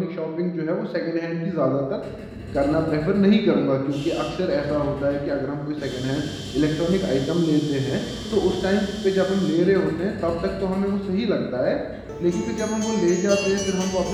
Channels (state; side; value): identical; both; correlation 1.00